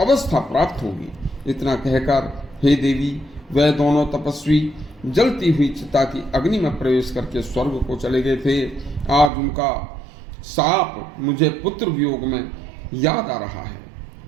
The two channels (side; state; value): left; drops out; at 9.3 s